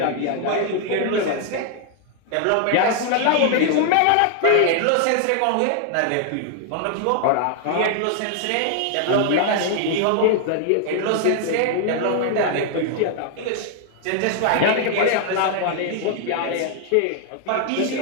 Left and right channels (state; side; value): different; both; correlation 0.00